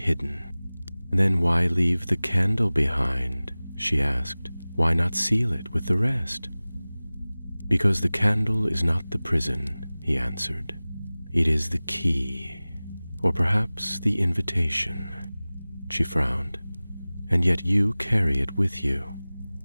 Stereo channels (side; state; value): both; inverted; correlation -0.99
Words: "Then why leave the candle behind?" she asked. "Why not seal it with the rest?" "Because the candle is not the prison," he answered. "It is the key, or perhaps the invitation." She frowned. "And yet you carry it with you."